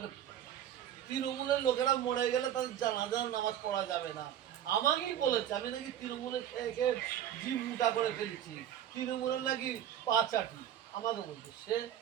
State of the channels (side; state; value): left; quieter; 10.7 dB